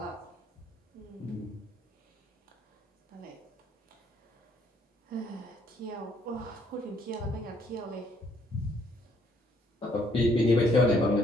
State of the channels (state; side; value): normal; both; correlation 0.66